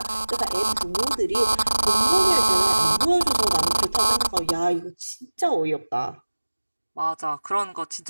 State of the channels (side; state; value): both; inverted; correlation -1.00